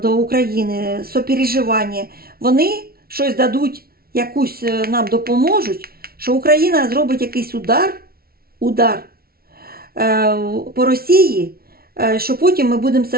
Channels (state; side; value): late; left; 0.44 ms